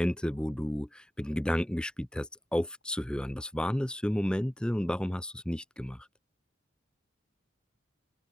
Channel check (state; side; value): normal; both; correlation 0.95